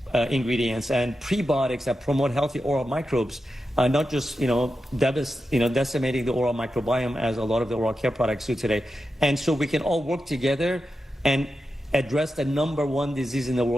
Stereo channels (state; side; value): normal; both; correlation 0.90